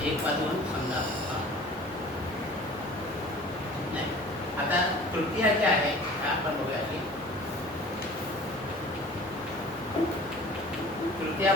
1 वाजून समजा नाही. आता तृतीया जी आहे आपण बघूया की तृतीया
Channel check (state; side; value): normal; both; correlation 0.45